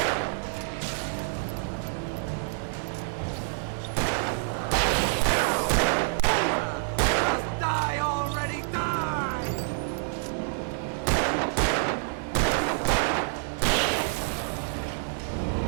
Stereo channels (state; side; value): silent; left; 60 dB below the other